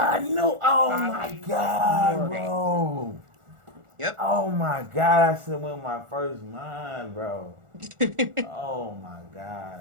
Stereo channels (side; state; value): left; late; 1.4 ms